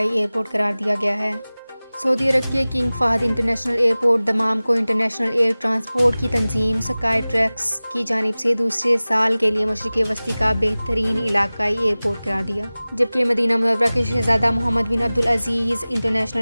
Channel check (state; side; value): inverted; both; correlation -0.98